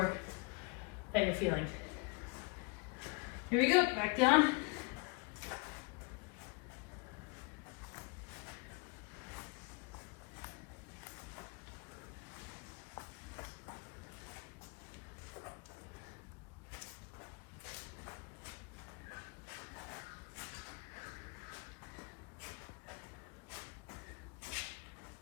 that you're feeling. Here we go, back down.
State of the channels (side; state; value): right; quieter; 29.8 dB